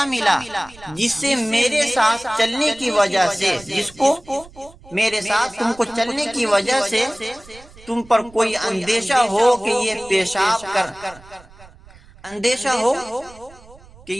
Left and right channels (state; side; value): noise; right; rumble, 23 dB below the sound